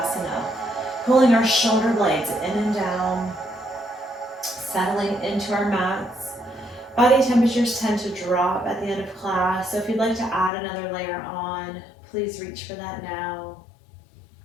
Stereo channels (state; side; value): drops out; right; at 10.5 s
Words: Pulling our shoulder blades in and down, settling into our mats. Body temperatures tend to drop at the end of class, so if you'd like to add another layer on, please reach for that now.